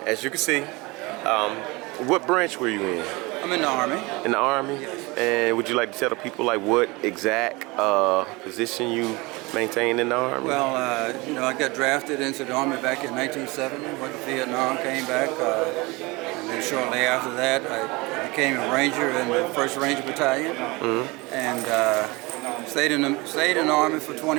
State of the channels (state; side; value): quieter; left; 24.4 dB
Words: as you can see. What branch were you in? I'm in the Army. In the Army? Yes. And would you like to tell the people like what exact position you maintained in the Army? Well, you know, I got drafted into the Army back in 1970, went to Vietnam, came back, and then shortly after that I became a Ranger in the 1st Ranger Battalion, and stayed in the Army for